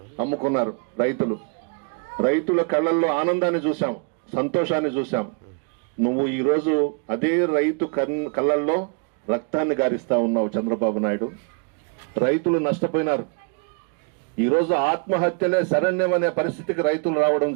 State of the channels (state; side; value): quieter; left; 37.0 dB